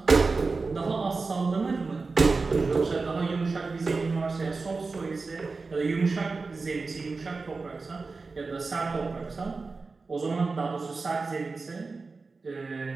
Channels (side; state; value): left; quieter; 4.1 dB